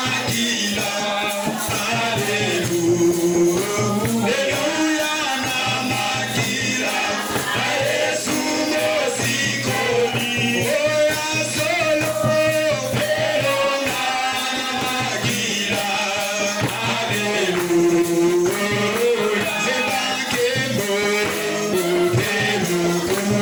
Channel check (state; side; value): identical; both; correlation 1.00